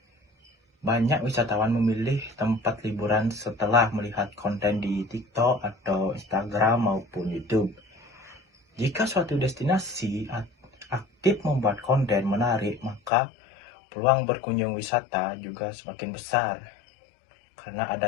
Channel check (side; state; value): right; drops out; at 13.1 s